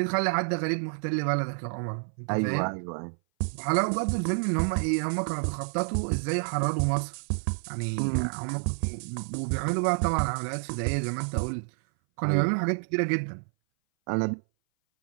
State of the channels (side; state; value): left; silent; 58 dB below the other